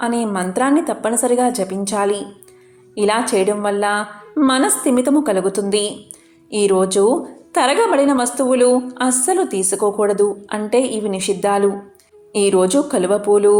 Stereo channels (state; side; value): identical; both; correlation 1.00